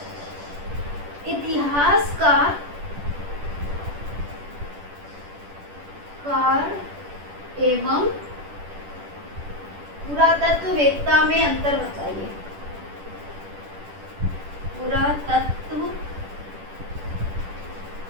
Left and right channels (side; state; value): left; late; 10 ms